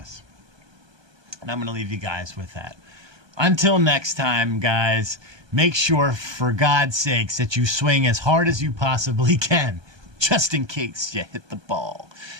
And I'm going to leave you guys with that. Until next time, guys, make sure, for God's sakes, that you swing as hard as you possibly can, just in case you hit the ball.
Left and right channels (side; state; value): left; late; 1.2 ms